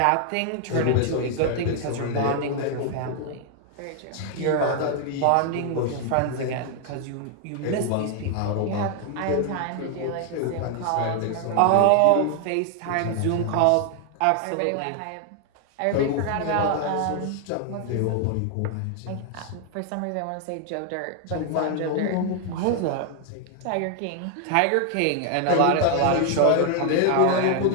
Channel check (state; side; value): different; both; correlation 0.00